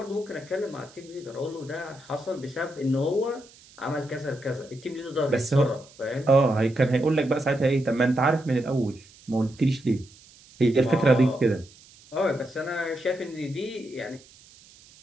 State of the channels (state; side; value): noise; right; hiss, 24 dB below the sound